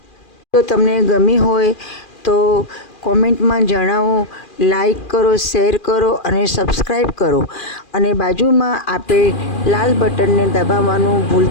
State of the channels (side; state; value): right; late; 2.4 ms